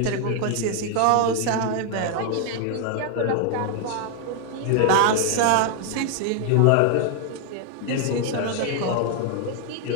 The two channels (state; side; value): different; both; correlation 0.00